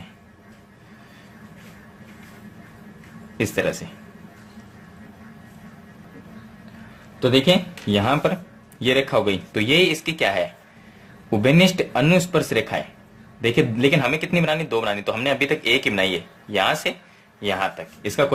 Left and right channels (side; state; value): both; identical; correlation 1.00